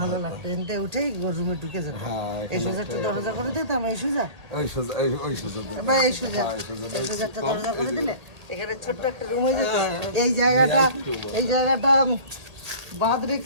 ভালো লাগতো। এনতে উঠেই রুমে ঢুকে যেত। এই সোজারটা দরজা করে দিতাম, এই সোজারটা দরজা করে দিলে এখানে ছোট্ট একটা রুম হয়ে যেত। এই জায়গাটা বাদ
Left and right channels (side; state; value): left; late; 1.8 ms